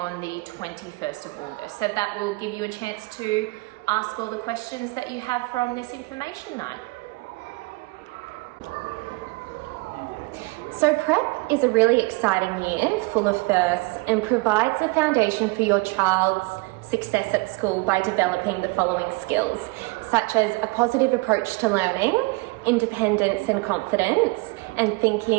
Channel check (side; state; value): left; quieter; 25.5 dB